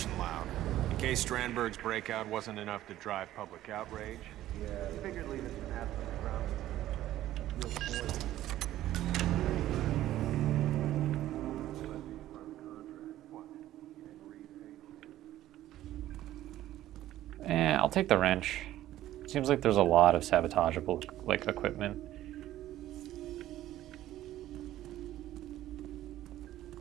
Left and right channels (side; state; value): left; quieter; 13.8 dB